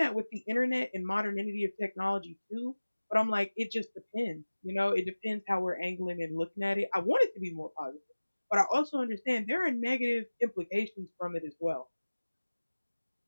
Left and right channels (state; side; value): inverted; both; correlation -1.00